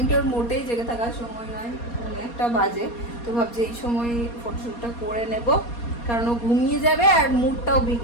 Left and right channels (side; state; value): right; late; 4.2 ms